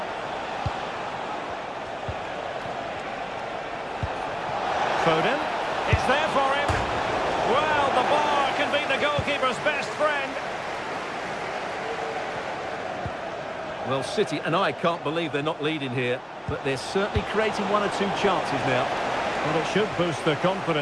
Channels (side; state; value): both; identical; correlation 1.00